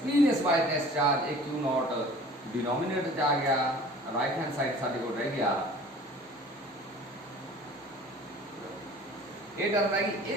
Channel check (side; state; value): both; normal; correlation 0.46